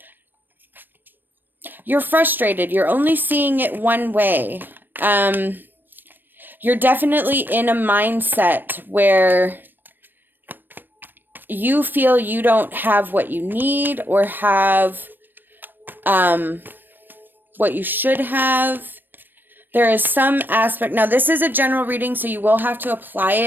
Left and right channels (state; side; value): late; left; 0.093 ms